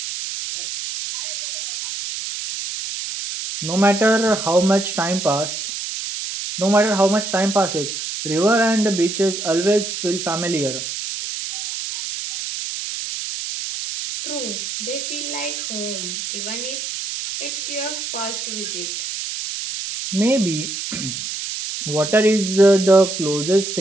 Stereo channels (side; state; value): right; noise; hiss, 5 dB below the sound